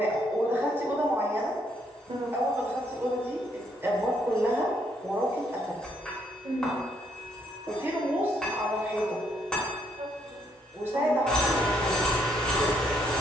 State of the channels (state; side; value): normal; both; correlation 0.72